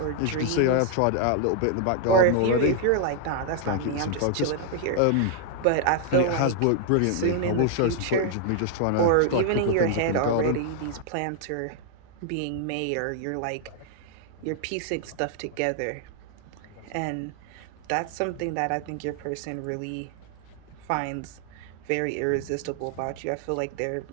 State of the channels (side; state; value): both; different; correlation 0.00